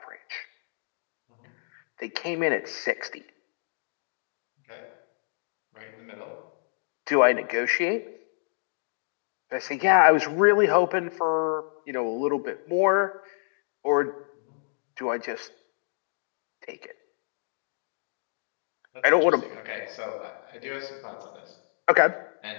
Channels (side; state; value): right; silent; digital silence